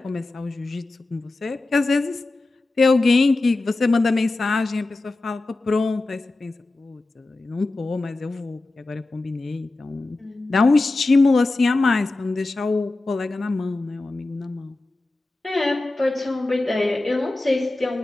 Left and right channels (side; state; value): right; quieter; 3.1 dB